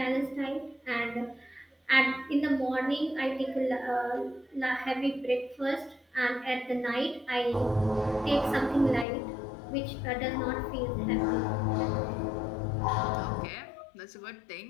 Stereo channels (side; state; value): right; drops out; at 9.1 s